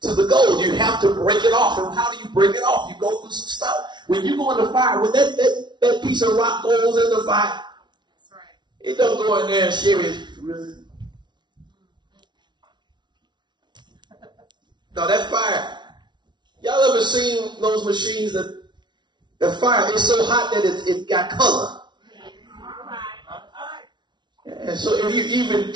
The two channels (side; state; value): left; late; 0.22 ms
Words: to the gold? You have to break it off. And how do you break it off? You go through some stuff. When you go in the fire, when that piece of rock goes in the fire, it don't go in there and share it. No, that fire. Y'all ever seen those machines that the fire is so hot that it got color? And so if